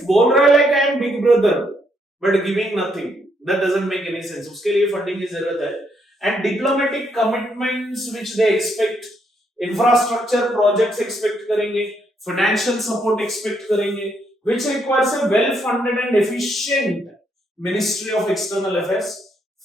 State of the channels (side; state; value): both; normal; correlation 0.74